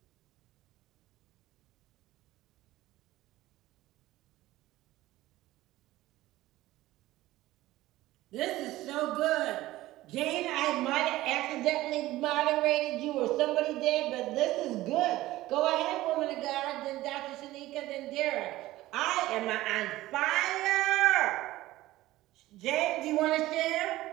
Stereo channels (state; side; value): quieter; left; 16.7 dB